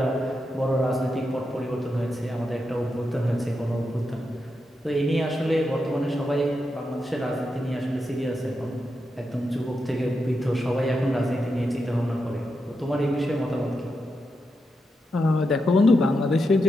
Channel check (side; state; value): both; normal; correlation 0.86